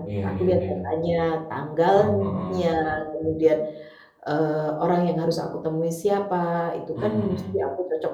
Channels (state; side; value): identical; both; correlation 1.00